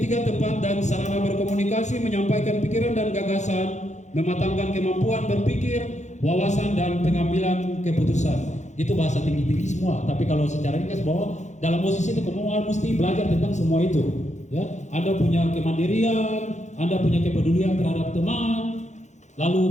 tempat dan sarana berkomunikasi, menyampaikan pikiran dan gagasan, mematangkan kemampuan berpikir, wawasan dan pengambilan keputusan. Itu bahasa tinggi-tinggi semua, tapi kalau secara ringkas bahwa dalam OSIS itu kamu mesti belajar tentang semua itu, ya. Anda punya kemandirian, Anda punya kepedulian terhadap teman,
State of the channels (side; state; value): right; late; 0.34 ms